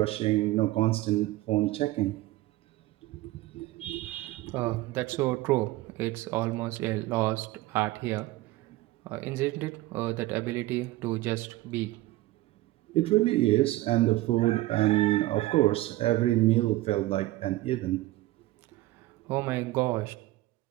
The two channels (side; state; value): left; quieter; 17.6 dB